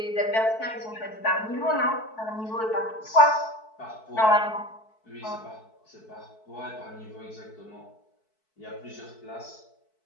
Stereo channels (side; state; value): right; late; 4.6 ms